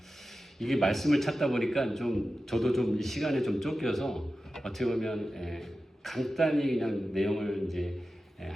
이게 말씀을 찾다 보니까 저도 이 시간에 좀 쫓겨서 어떻게 보면 간단히 그냥 내용을 이제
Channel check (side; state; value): both; normal; correlation 0.93